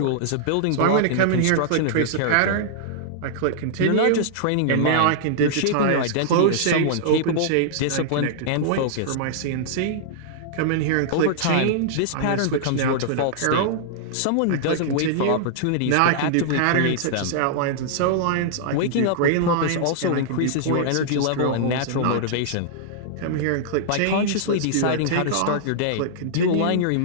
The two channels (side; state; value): both; different; correlation -0.01